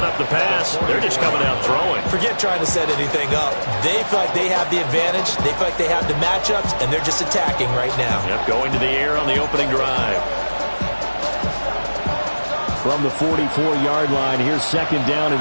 up the pass. They're just coming out throwing. Forget trying to set anything up. They feel like they have the advantage. They feel like they have the matchups, and they're just attacking right now. Yep, going to the air on the opening drive. From the 44-yard line, here's 2nd down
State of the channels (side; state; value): both; inverted; correlation -1.00